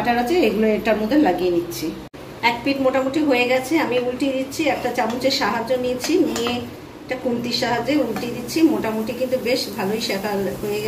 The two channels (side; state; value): both; identical; correlation 1.00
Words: আছে এগুলো এটার মধ্যে লাগিয়ে নিচ্ছি। এক পিঠ মোটামুটি হয়ে গেছে, আমি উল্টিয়ে দিচ্ছি। একটা চামচের সাহায্য নিয়ে একটা খুন্তির সাহায্যে উল্টিয়ে দিচ্ছি। মোটামুটি কিন্তু বেশ ভালোই শেখা হয়ে